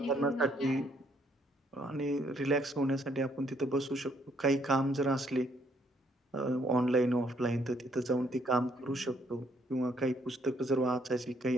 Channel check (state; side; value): normal; both; correlation 0.69